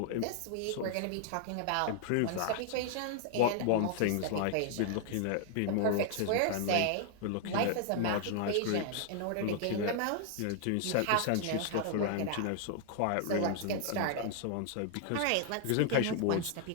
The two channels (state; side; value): different; both; correlation 0.00